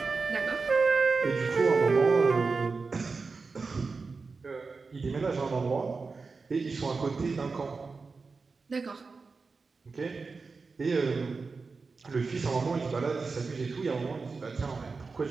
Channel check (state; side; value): quieter; left; 4.4 dB